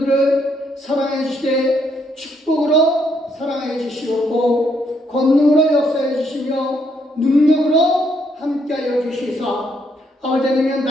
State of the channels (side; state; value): both; normal; correlation 0.73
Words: 사랑해 주시되 축복으로 사랑해 주시옵고 권능으로 역사해 주시며 능력으로 함께하여 주시사 아버지 하나님